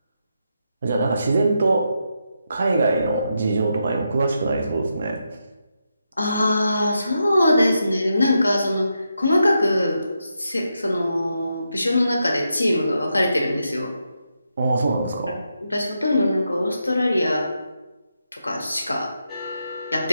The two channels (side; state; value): both; inverted; correlation -0.84